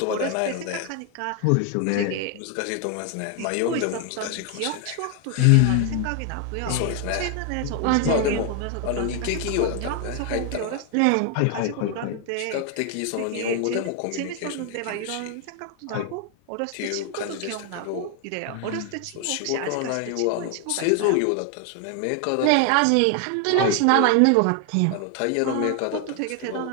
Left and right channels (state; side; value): different; both; correlation 0.00